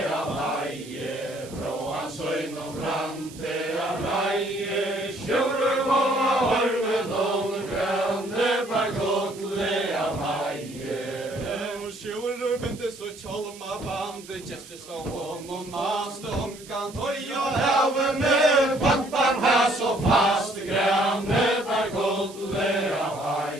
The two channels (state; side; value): noise; right; hiss, 18 dB below the sound